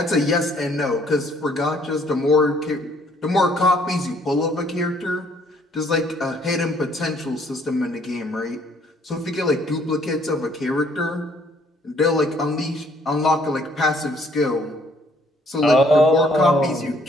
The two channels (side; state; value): both; normal; correlation 0.63